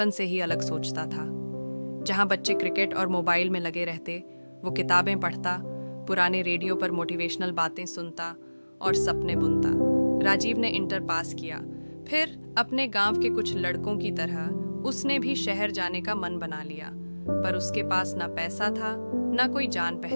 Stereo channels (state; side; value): inverted; both; correlation -1.00